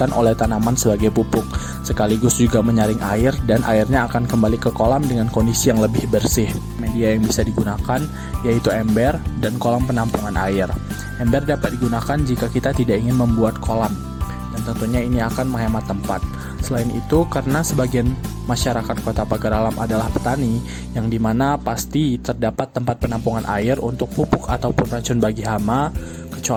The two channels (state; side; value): identical; both; correlation 1.00